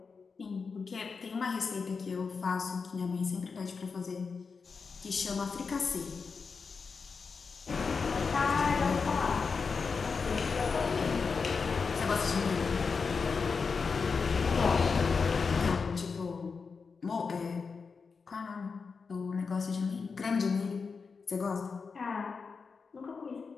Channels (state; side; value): quieter; right; 5.1 dB